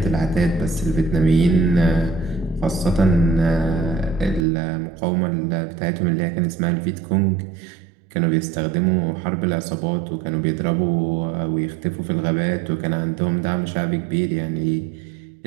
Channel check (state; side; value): drops out; left; at 4.5 s